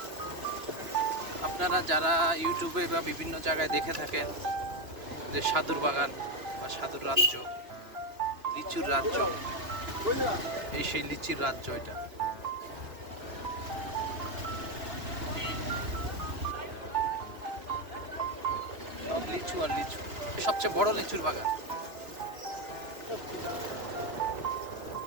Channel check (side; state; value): left; late; 2.9 ms